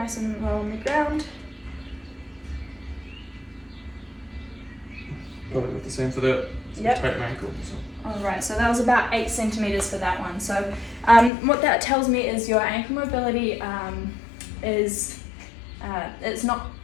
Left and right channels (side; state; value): right; drops out; at 11.3 s